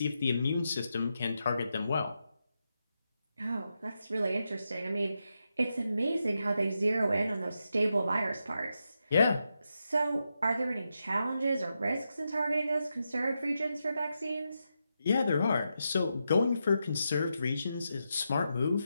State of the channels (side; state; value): both; inverted; correlation -0.86